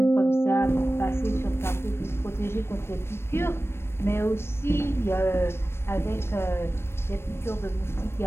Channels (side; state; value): right; late; 0.12 ms